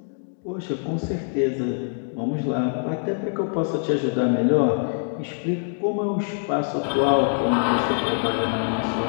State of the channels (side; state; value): right; silent; 62 dB below the other